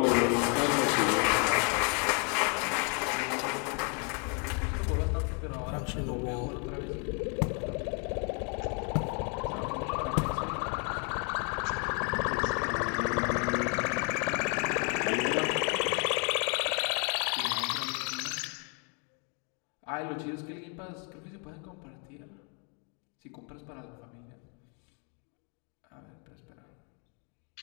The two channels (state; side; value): quieter; right; 37.6 dB